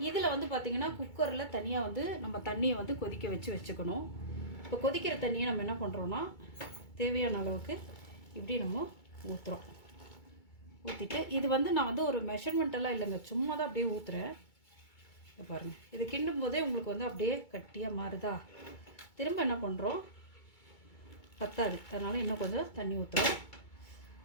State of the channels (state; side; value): late; right; 2.2 ms